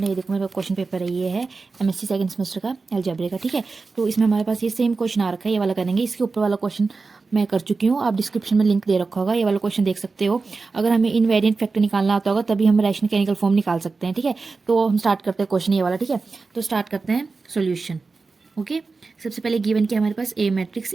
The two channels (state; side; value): quieter; left; 4.1 dB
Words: है। ये देखो मेरे पास क्वेश्चन पेपर है, ये है एमएससी सेकंड सेमेस्टर का अलजेब्रा का, ठीक है। तो इसमें हमारे पास ये सेम क्वेश्चन आ रखा है, ये वाला करेंगे। इसके ऊपर वाला क्वेश्चन मैं कर चुकी हूँ, आप डिस्क्रिप्शन में लिंक दे रखा होगा, ये वाला क्वेश्चन देख सकते हो। अगर हमें इनवेरिएंट फैक्टर निकालना आता होगा तभी हम रैशनल केमिकल फॉर्म निकाल सकते हैं, ठीक है। तो हम स्टार्ट करते हैं क्वेश्चन ये वाला, ठीक है। तो स्टार्ट करते हैं सोल्यूशन। ओके, सबसे पहले गिवन क्या हमारे पास, ए मैट्रिक्स।